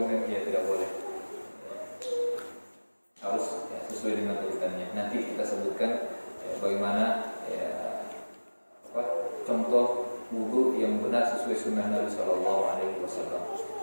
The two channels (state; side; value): inverted; both; correlation -1.00